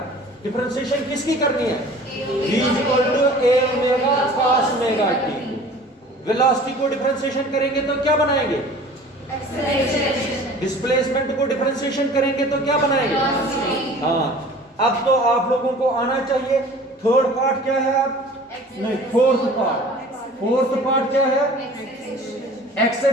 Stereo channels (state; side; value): normal; both; correlation 0.45